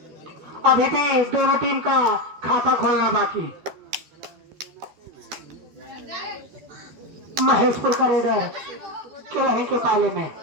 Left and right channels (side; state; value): left; late; 13 ms